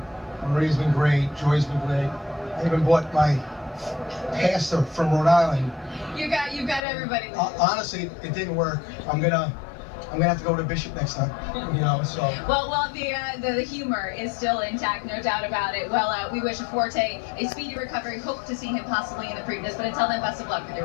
Maria's been great. Joy's been great. I even bought my pastor from Rhode Island. You've got everybody. Honestly, it didn't work. I'm gonna have to go to Bishop next time. You know, so. Well, the humor is still intact, no doubt about it. Well, we wish Forte a speedy recovery. Hope to see him possibly in the Preakness. But until then, best of luck with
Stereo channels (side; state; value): right; drops out; at 6.8 s